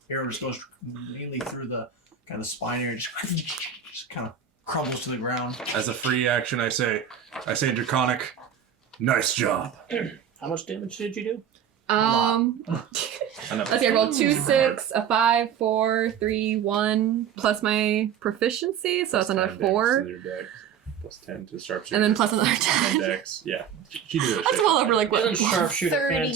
arrow just goes mainly through the kind of spine area. Just kind of crumbles to the ground. As a free action, I say draconic. Nice job. How much damage did you do? Let's see, I rolled 2, 6, a 5, 4, 3, 1, plus my proficiency, so it's another 4. Plus 10 to sharpshooter. And then plus another And 10. dex. Yeah. She did that That's shit. well over like what? Isn't sharpshooter 30,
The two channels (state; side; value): quieter; left; 8.2 dB